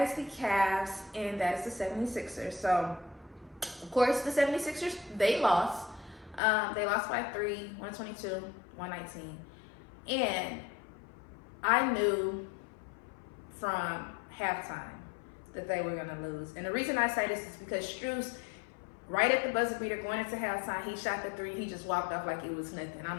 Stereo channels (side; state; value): right; drops out; at 6.4 s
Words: is the Cavs, and that is the 76ers. So, of course, the 76ers, they lost. They lost by 3, 122, 119. And I knew from halftime that they were going to lose. And the reason I say this is because Strus, right at the buzzer beater going into halftime, he shot the 3. He just walked off like it was nothing. I'm